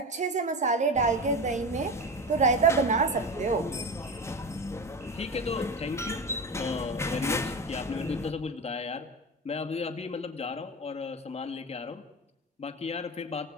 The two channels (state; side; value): normal; both; correlation 0.25